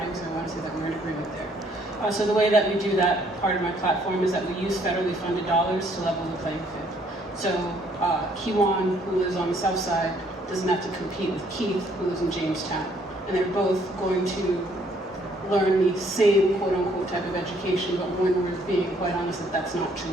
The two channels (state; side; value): normal; both; correlation 0.65